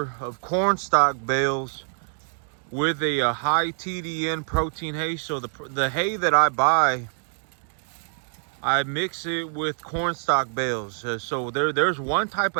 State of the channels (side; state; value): left; silent; digital silence